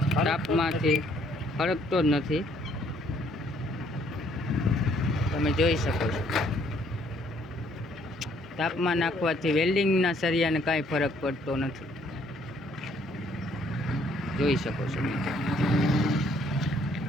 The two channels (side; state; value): both; normal; correlation 0.65